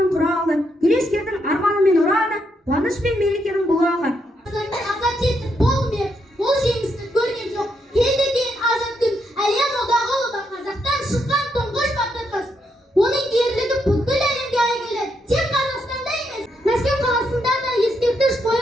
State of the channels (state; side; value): normal; both; correlation 0.78